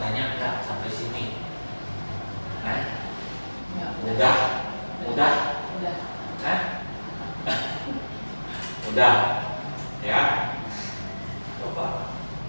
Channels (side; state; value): both; inverted; correlation -1.00